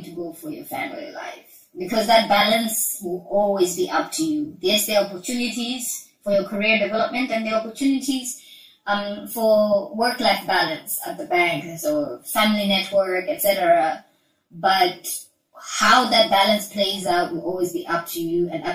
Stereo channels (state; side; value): identical; both; correlation 1.00